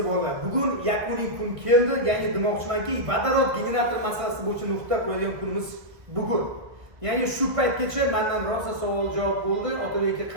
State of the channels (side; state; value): left; late; 1.2 ms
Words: bo'ldi. Bugun yakuniy kun keldi. Ya'ni demoqchimanki, vodorod generator masalasi bo'yicha nuqta qo'yadigan kunimiz bugun. Ya'ni shu paytgacha mendan rosa savol javob bo'ldi. Otabek